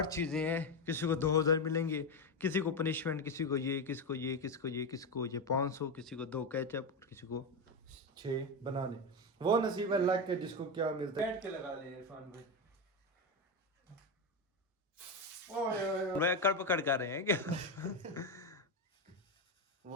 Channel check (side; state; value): both; normal; correlation 0.13